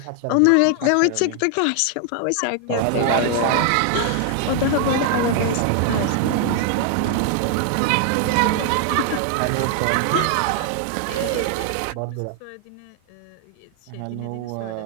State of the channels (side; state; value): both; different; correlation 0.00